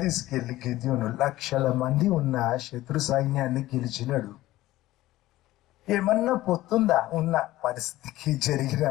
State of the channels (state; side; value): quieter; right; 16.3 dB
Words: తీసుకెళ్లి గిద్యోను 1,00,000 మంది ఉన్న శత్రు సైన్యాన్ని గెలిచినాడు. ఏమన్నా పొత్తుందా ఉన్న పరిస్థితికి, జరిగిన